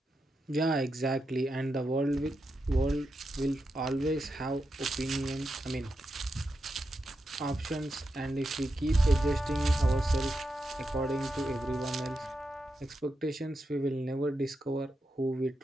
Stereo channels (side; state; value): both; normal; correlation 0.87